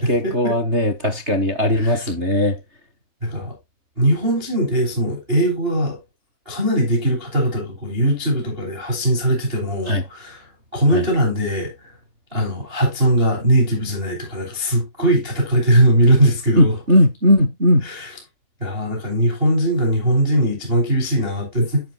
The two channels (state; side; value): late; left; 2.9 ms